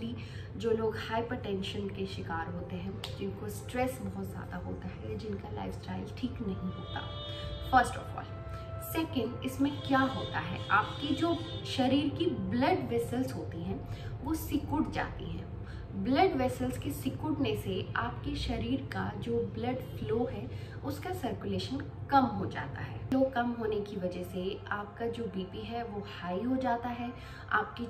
जो लोग हाइपरटेंशन के शिकार होते हैं, जिनको स्ट्रेस बहुत ज़्यादा होता है, जिनका लाइफस्टाइल ठीक नहीं होता, फर्स्ट ऑफ ऑल। सेकंड, इसमें क्या होता है, आपकी जो शरीर की ब्लड वेसल्स होती हैं वो सिकुड़ जाती हैं। ब्लड वेसल्स के सिकुड़ने से आपके शरीर का जो ब्लड फ्लो है उसका सर्कुलेशन कम हो जाता है। फ्लो कम होने की वजह से आपका जो बीपी है वो हाई हो जाता है, आपकी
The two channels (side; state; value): both; identical; correlation 1.00